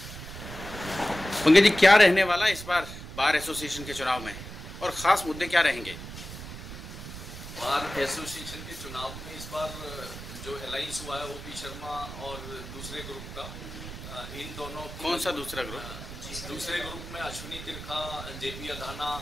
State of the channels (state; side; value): noise; right; rumble, 11 dB below the sound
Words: पंकज जी, क्या रहने वाला इस बार बार एसोसिएशन के चुनाव में और खास मुद्दे क्या रहेंगे? बार एसोसिएशन के चुनाव में इस बार जो अलायंस हुआ है ओपी शर्मा और दूसरे ग्रुप का, इन दोनों कौन सा दूसरा ग्रुप? दूसरे ग्रुप में अश्विनी तिरखा, जेपी अधाना